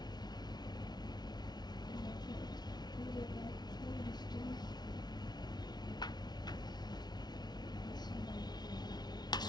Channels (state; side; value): late; right; 0.20 ms